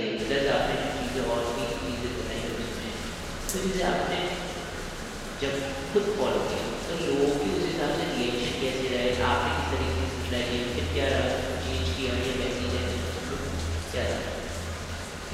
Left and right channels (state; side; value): identical; both; correlation 1.00